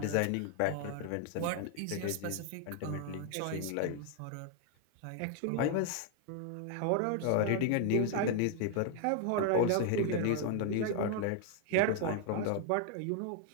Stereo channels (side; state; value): both; different; correlation 0.00